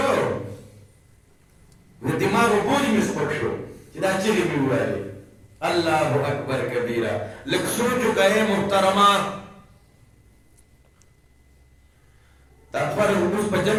د دماغو بوج مې سپک شو چې دا چغې مې وویلې الله اکبر کبیره لږ سوچ وکړئ محترمه دا فرض اوس په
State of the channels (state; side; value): identical; both; correlation 1.00